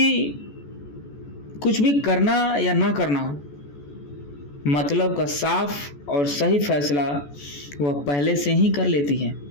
भी करना या ना करना हो, मतलब का साफ और सही फैसला वह पहले से ही कर लेती है।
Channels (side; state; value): right; late; 14 ms